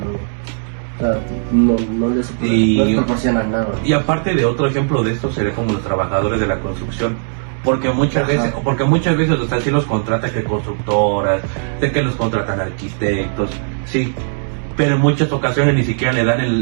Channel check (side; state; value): left; silent; 68 dB below the other